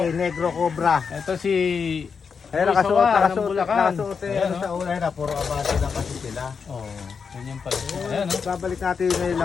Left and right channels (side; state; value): right; quieter; 5.9 dB